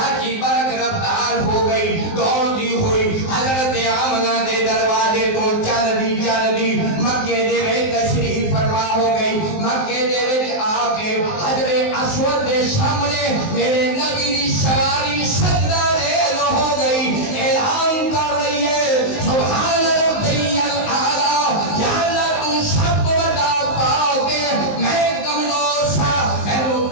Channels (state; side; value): late; right; 19 ms